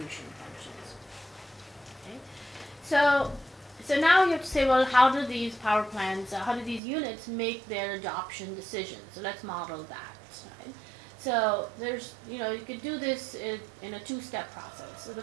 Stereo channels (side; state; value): left; drops out; at 6.8 s